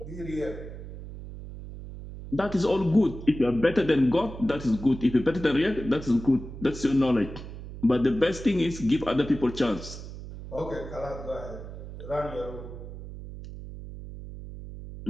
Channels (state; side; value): noise; right; hum, 12 dB below the sound